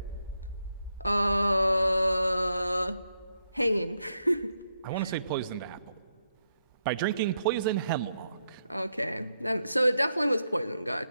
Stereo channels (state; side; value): inverted; both; correlation -0.81